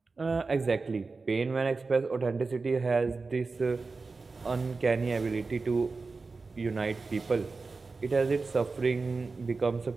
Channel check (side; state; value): left; quieter; 4.1 dB